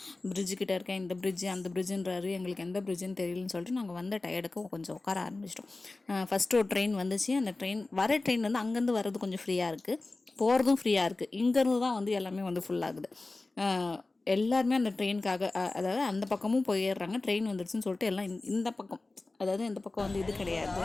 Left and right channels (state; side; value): quieter; right; 3.2 dB